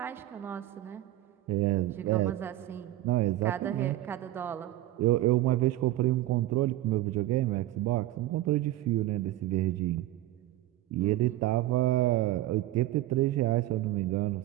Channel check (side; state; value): left; quieter; 15.4 dB